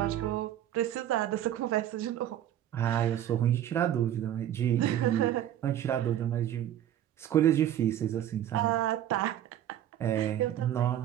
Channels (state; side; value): quieter; left; 11.4 dB